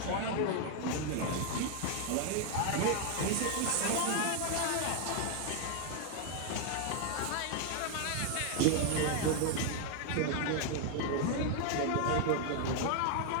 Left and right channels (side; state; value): both; different; correlation 0.00